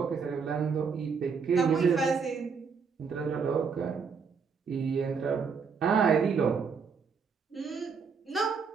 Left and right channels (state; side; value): quieter; left; 5.7 dB